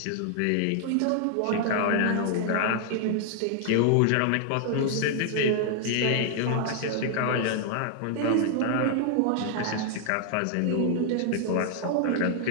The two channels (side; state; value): both; different; correlation 0.00